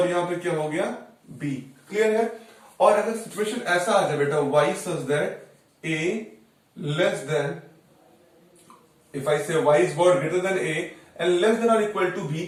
यहां पे क्या हो गया b। क्लियर है? और अगर सिचुएशन ऐसा आ जाए बेटा y such that a less than, if I से y is what greater than a and less than और इक्वल टू b,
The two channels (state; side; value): identical; both; correlation 1.00